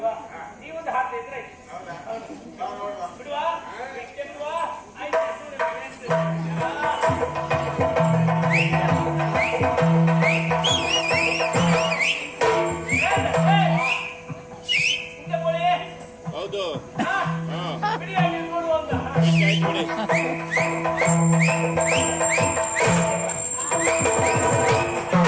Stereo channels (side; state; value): both; identical; correlation 1.00